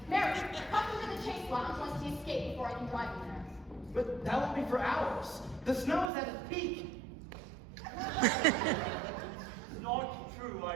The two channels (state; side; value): drops out; left; at 6.1 s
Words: Mary, come into the chase lounge lest he escape before I can drive him there. But that won't be for hours. The snow is at its peak. It's not true,